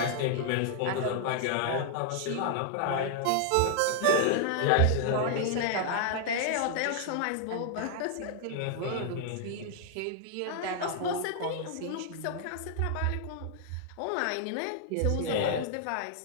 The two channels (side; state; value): both; different; correlation 0.00